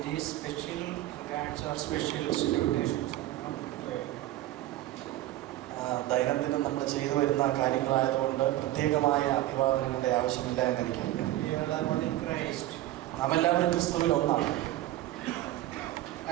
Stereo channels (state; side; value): quieter; left; 15.3 dB